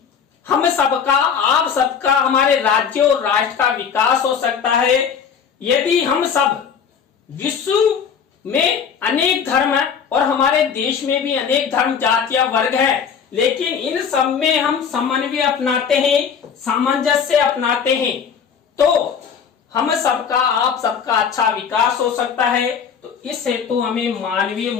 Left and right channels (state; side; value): quieter; right; 7.0 dB